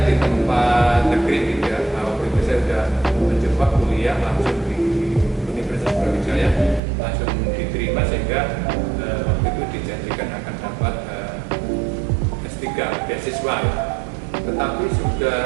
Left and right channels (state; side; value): drops out; left; at 6.8 s